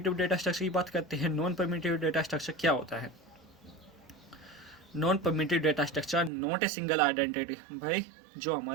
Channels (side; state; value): left; drops out; at 6.3 s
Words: डेटा स्ट्रक्चर की बात करते हैं। नॉन परमिटिव डेटा स्ट्रक्चर क्या होता है? Non primitive data structure not a single identity. भाई जो